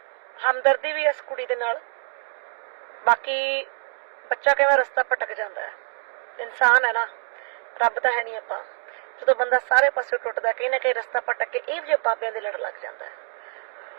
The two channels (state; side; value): silent; left; digital silence